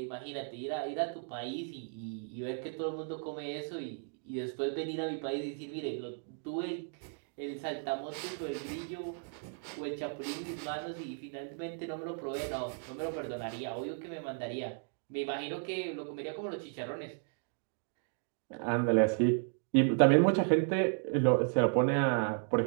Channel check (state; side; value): silent; left; 55 dB below the other